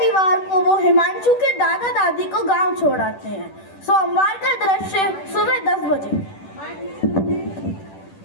को वो हिमांशु के दादा दादी को गांव छोड़ आते हैं। सोमवार का दृश्य सुबह 10 बजे।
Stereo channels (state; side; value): late; right; 10 ms